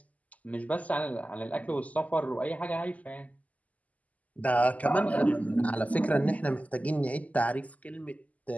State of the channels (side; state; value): right; late; 0.074 ms